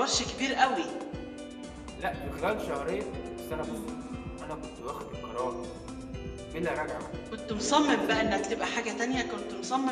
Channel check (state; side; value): identical; both; correlation 1.00